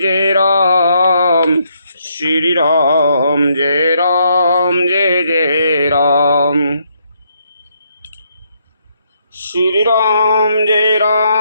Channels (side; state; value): both; inverted; correlation -0.74